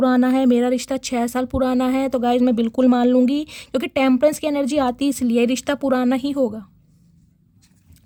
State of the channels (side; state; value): both; identical; correlation 1.00